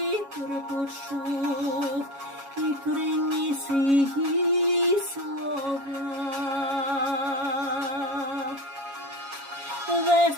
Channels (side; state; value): left; late; 7.2 ms